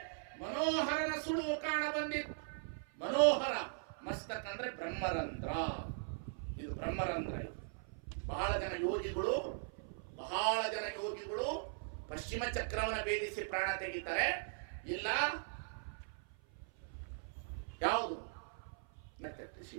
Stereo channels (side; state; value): left; silent; 51 dB below the other